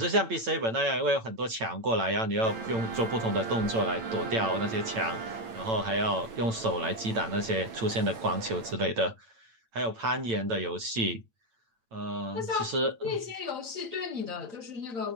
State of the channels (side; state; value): left; late; 8.9 ms